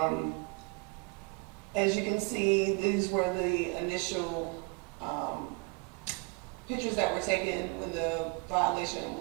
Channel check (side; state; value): left; quieter; 32.4 dB